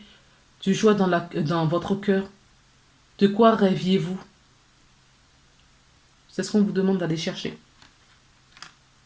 du joie dans votre cœur? De quoi rêviez-vous? C'est ce qu'on vous demande d'aller chercher.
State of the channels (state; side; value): identical; both; correlation 1.00